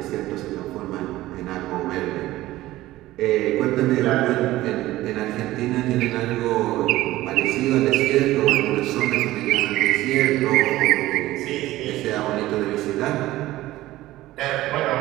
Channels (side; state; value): left; quieter; 16.4 dB